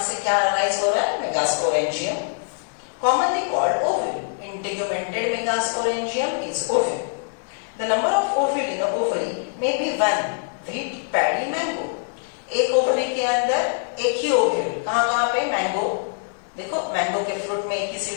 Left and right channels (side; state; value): right; silent; 63 dB below the other